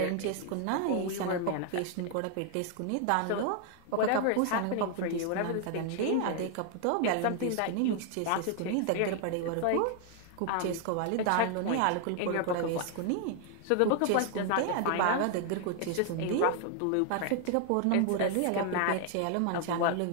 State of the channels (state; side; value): different; both; correlation 0.00